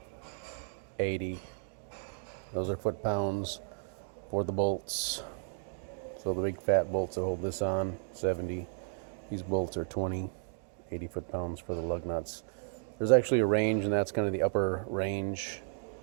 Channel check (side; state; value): left; silent; 55 dB below the other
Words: 80. Those are foot-pounds for the bolts. So the big fat bolts that hold this on, 70. These bolts are 20, 80 foot-pounds for the lug nuts. There's actually a range, and that's kind of the upper range